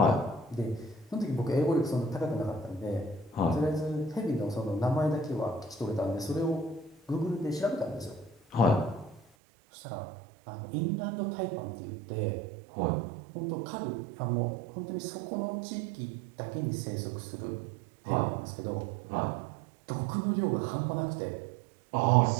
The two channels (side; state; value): left; drops out; at 9.2 s